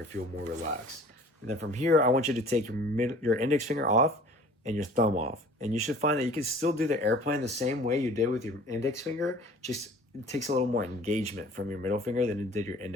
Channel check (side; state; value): both; normal; correlation 0.48